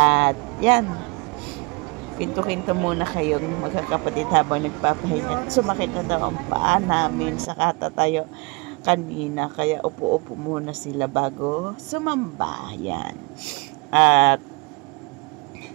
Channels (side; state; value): left; quieter; 28.6 dB